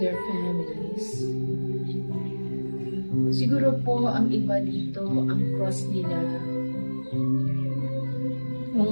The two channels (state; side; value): inverted; both; correlation -1.00